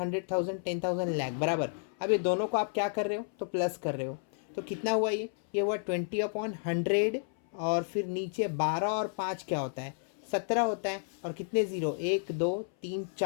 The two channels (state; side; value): silent; right; 56 dB below the other